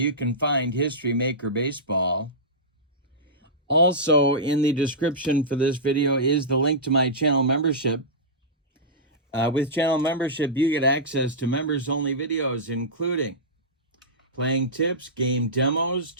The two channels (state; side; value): normal; both; correlation -0.15